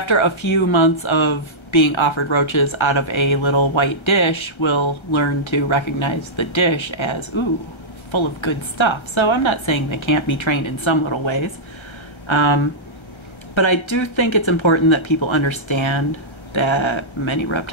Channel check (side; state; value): right; late; 1.3 ms